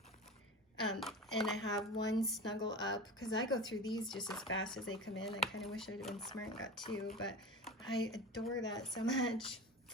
And I have 1 Snuggle Up, because I go through these just as fast as they come in. I kind of wish I'd have been smart and got 2, but I adore that so much.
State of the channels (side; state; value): both; normal; correlation 0.30